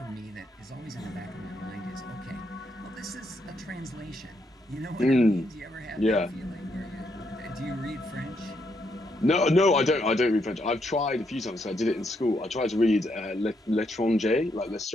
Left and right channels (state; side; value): normal; both; correlation 0.77